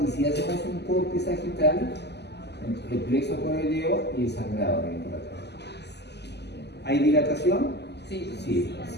y si hacemos un corte sagital, el plexo correleo y el sangrado viene por acá. ¿Hay dilatación? Sí. Sí.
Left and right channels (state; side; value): late; right; 0.50 ms